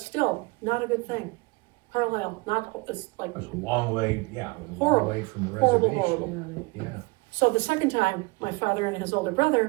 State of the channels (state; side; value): quieter; left; 27.0 dB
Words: still, not a good thing. Carlisle, it's like, It was a long way, yeah, it was a long Horrible. way from the Horrible, reservation. horrible. Yeah. so the second time, my father and his older